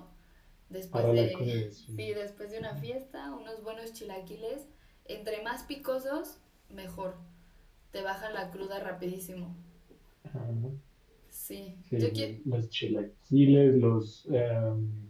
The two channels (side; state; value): both; identical; correlation 1.00